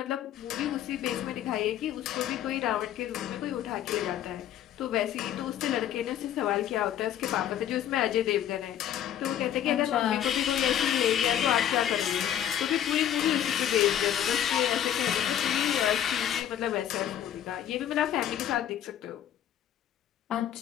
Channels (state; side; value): quieter; right; 10.6 dB